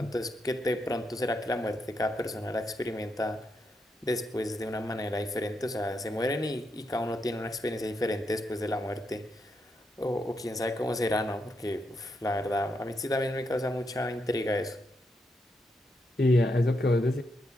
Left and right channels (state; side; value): normal; both; correlation 0.81